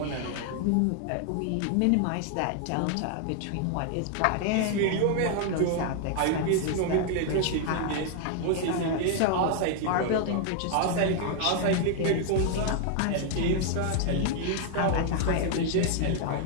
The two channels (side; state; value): both; different; correlation 0.00